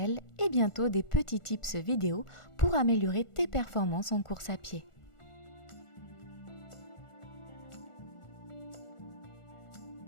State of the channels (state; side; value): late; right; 1.4 ms